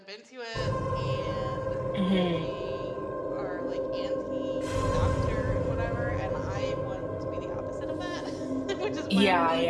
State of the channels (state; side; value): identical; both; correlation 1.00